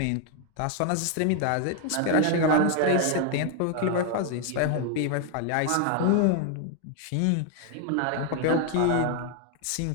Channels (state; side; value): different; both; correlation 0.00